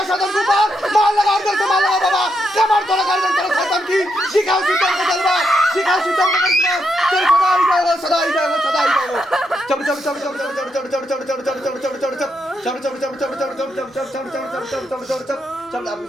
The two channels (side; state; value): both; normal; correlation 0.81